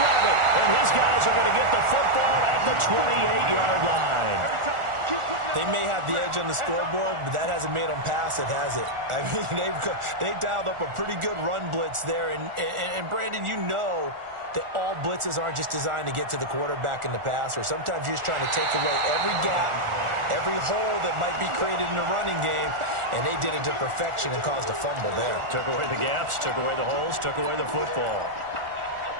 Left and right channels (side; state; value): left; late; 1.4 ms